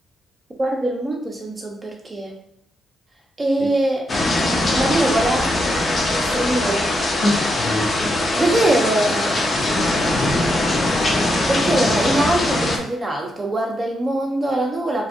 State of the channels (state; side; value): normal; both; correlation 0.82